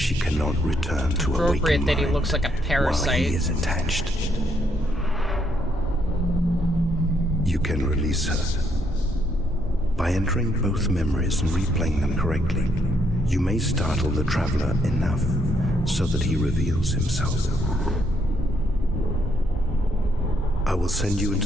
cannot return to a waking Appropriate that he mind looks like a while parasite. he is attached. You can release her. By entering both memories and replaying them correctly, you may startle the Traveler enough so that he reveals himself. I will send you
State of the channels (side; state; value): both; normal; correlation 0.73